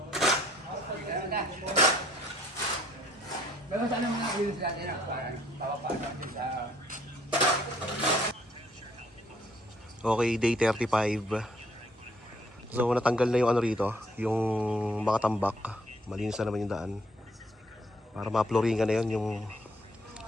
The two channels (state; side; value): normal; both; correlation 0.64